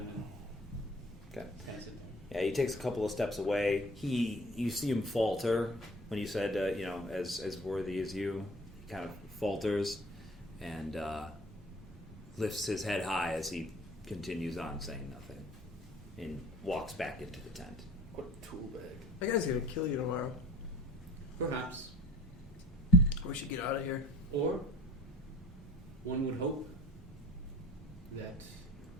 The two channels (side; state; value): both; normal; correlation 0.48